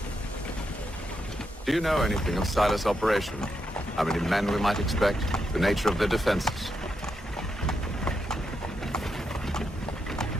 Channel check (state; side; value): normal; both; correlation 0.83